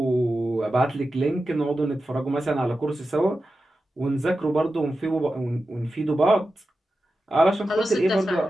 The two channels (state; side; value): normal; both; correlation 0.92